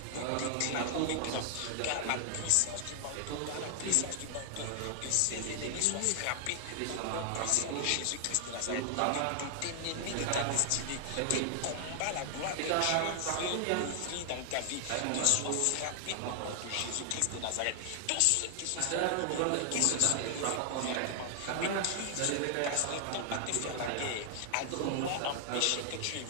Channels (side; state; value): both; different; correlation 0.00